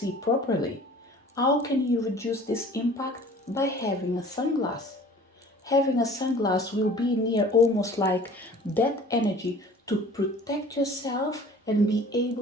properly. How can you reduce this impact? By having a sunglass. Having a sunglass will be near almost like that energy to protect yourself and be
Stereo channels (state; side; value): normal; both; correlation 0.47